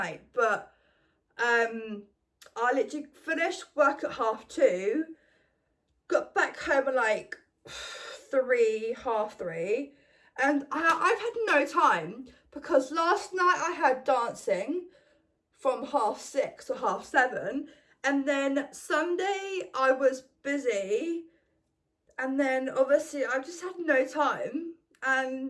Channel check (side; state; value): both; identical; correlation 1.00